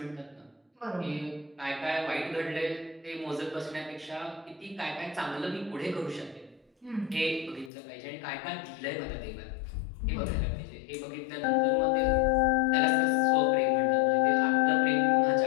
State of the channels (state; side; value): drops out; right; at 7.7 s